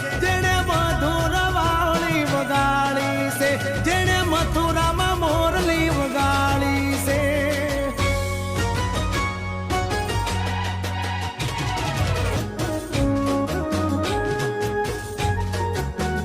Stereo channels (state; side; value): identical; both; correlation 1.00